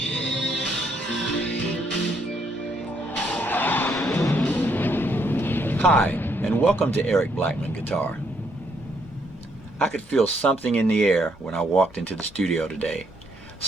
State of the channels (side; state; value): both; normal; correlation 0.72